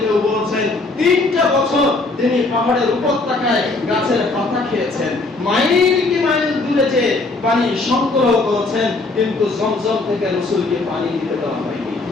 কেউ বলেছেন 3টা বছর তিনি পাহাড়ের উপত্যকায় গাছের পাতা খেয়েছেন, মাইল কি মাইল দূরে যে পানি সংগ্রহ করেছেন, কিন্তু জমজম থেকে রাসূলকে পানি দিতে দেওয়া হয়নি।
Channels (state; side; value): quieter; right; 3.3 dB